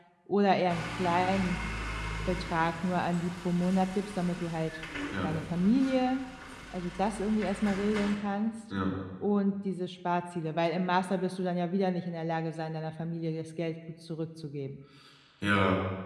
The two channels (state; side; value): identical; both; correlation 1.00